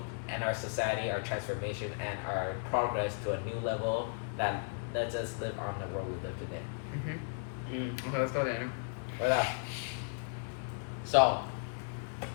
and our society, our transformation, and our progress to a new level that lets us live on the world we live today. Okay, let's go Daniel. So,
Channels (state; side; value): silent; right; digital silence